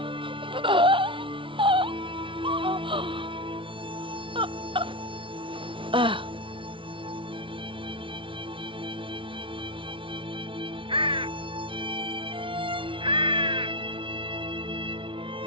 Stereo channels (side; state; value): left; late; 0.25 ms